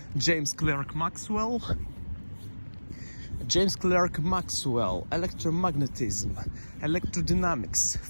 James Clerk Maxwell, electromagnetism, electrodynamics,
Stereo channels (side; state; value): both; inverted; correlation -1.00